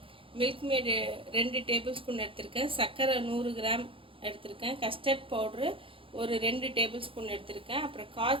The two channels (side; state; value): left; late; 0.26 ms